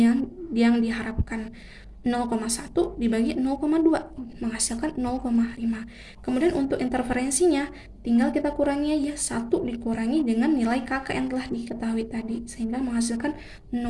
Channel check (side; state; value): both; identical; correlation 1.00